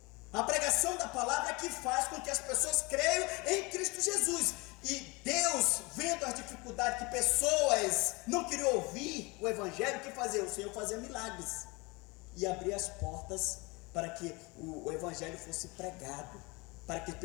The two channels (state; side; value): quieter; right; 25.8 dB